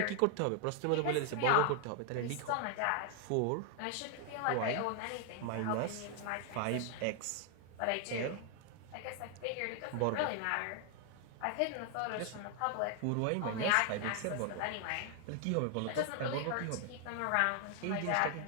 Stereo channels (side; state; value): both; different; correlation 0.00